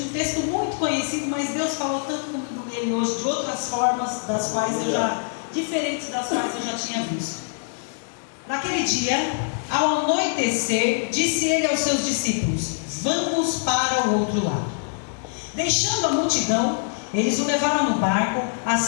Um texto muito conhecido, mas Deus falou tanto comigo nele hoje, de outras formas, diferentes das quais eu já tinha visto. Naquele dia, ao anoitecer, disse ele aos seus discípulos: vamos para o outro lado. Deixando a multidão, eles o levaram no barco,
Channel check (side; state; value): right; silent; digital silence